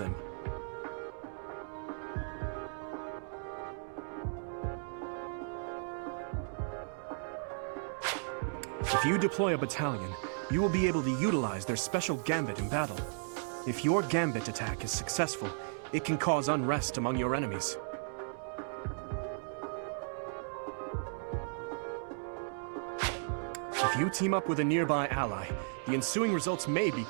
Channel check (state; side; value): silent; left; digital silence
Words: If you deploy a battalion, you will be able to utilize their special gambit in battle. If your gambit attack is successful, it can cause unrest among your enemies. If you team up with a nearby ally, the ensuing results may be